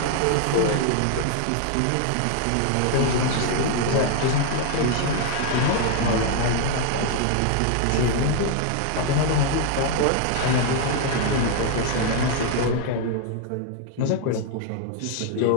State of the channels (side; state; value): both; different; correlation 0.00